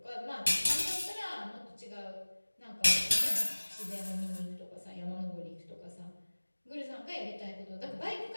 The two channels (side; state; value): both; inverted; correlation -1.00